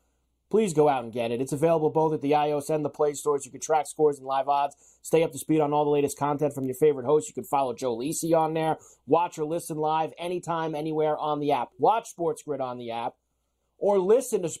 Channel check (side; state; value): both; identical; correlation 1.00